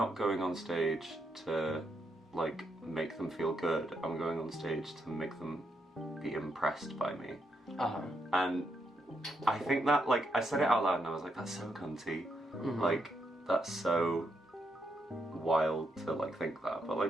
going on stage to like make them feel good. I'm going on stage to make them be impressed by me. Uh-huh. And I think that, like, I said it out loud and I was like, that's so cunty. Mm-hmm. Like, that's so wild to like think that, but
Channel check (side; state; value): both; normal; correlation 0.80